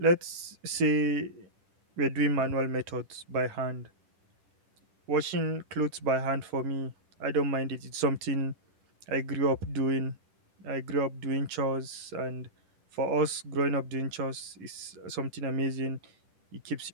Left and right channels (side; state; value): left; late; 10 ms